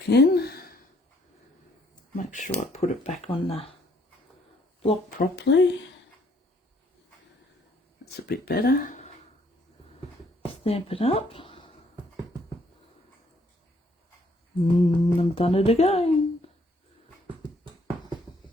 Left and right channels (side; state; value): both; normal; correlation 0.66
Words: in. Make sure I put it back on the block properly. That's a bit better. Stamp it up. I've done it again.